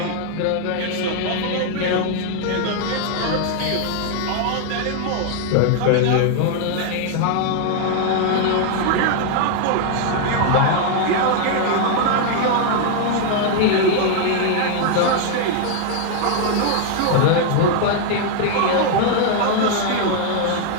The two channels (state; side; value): different; both; correlation 0.00